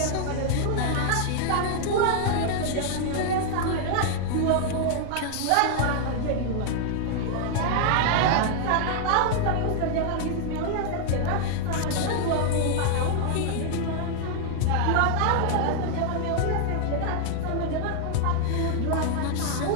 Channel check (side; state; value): both; different; correlation 0.00